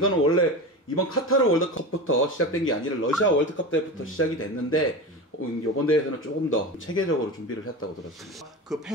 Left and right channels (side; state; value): both; normal; correlation 0.26